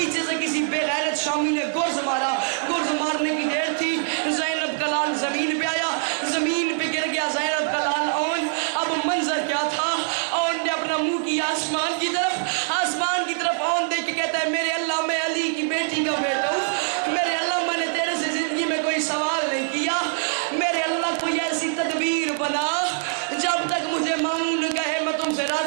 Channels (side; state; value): left; silent; digital silence